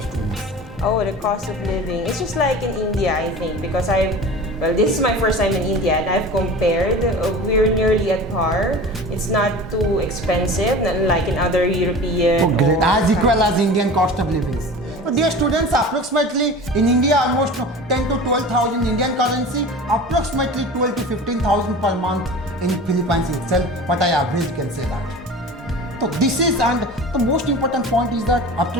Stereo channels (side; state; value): both; normal; correlation 0.36